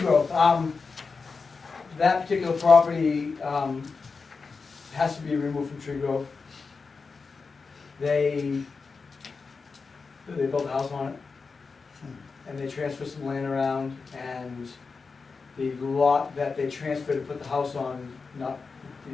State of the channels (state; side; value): quieter; right; 4.7 dB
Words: that particular property, has to be removed from tree growth. They built a house on it, and they transferred some land around, and the lot that they transferred to put the house on,